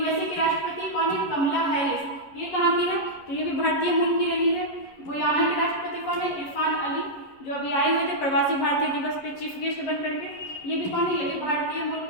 के राष्ट्रपति कौन है, कमला हैरिस, ये कहाँ की है, तो ये भी भारतीय मूल की रही है। गुयाना के राष्ट्रपति कौन है, इरफान अली, जो अभी आए हुए थे प्रवासी भारतीय दिवस पे चीफ गेस्ट बन करके, ये भी कौन है, ये भी भारतीय मूल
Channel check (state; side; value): late; right; 11 ms